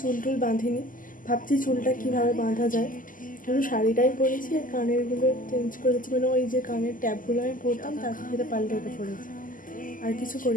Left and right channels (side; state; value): right; late; 0.39 ms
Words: চুল টুল বাঁধিনি, ভাবছি চুলটা কীভাবে বাঁধা যায়। শুধু শাড়িটাই পরেছি আর কানেরগুলো চেঞ্জ করেছি, মানে ওই যে কানের ট্যাপগুলো আমি পরতাম তার সাথে পাল্টে ওটা পরেছি, আর কিছু